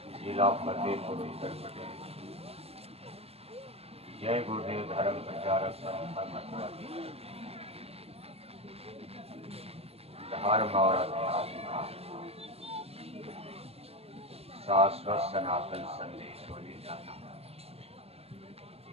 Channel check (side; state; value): left; late; 0.29 ms